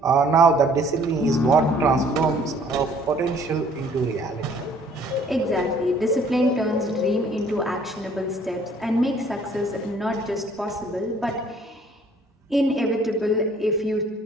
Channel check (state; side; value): normal; both; correlation 0.58